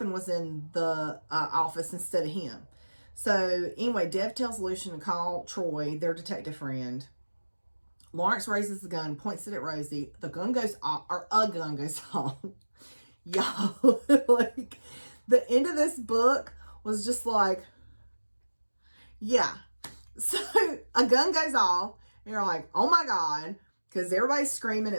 was in the office instead of him. So anyway, Dev tells Lucian to call Troy, their detective friend. Lawrence raises the gun, points it at Rosie. The gun goes off, or a gun goes off. Y'all, like, the end of this book was just like, yeah. So a gun goes off, and you're like, oh my God, because everybody's screaming.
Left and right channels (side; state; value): both; inverted; correlation -1.00